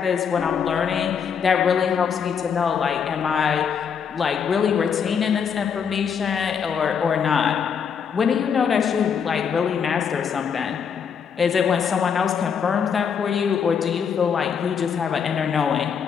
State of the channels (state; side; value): quieter; right; 7.0 dB